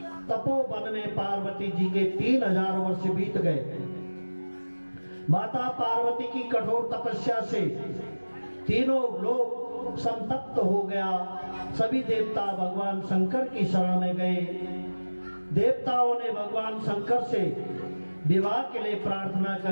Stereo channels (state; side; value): inverted; both; correlation -1.00